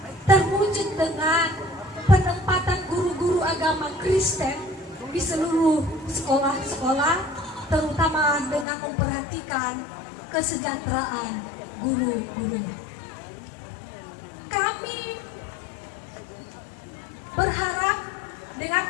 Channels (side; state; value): right; drops out; at 8.7 s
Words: terwujud dengan penempatan guru-guru agama Kristen di seluruh sekolah-sekolah, terutama dengan memperhatikan kesejahteraan guru-gurunya. Kami berharap dengan